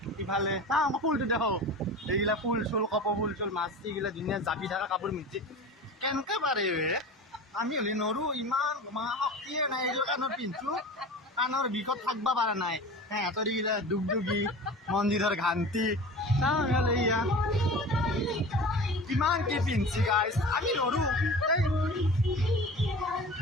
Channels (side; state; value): both; normal; correlation 0.36